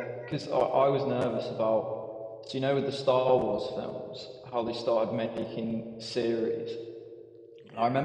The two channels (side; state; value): both; identical; correlation 1.00